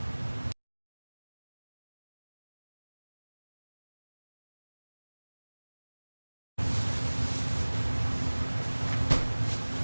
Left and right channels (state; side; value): inverted; both; correlation -1.00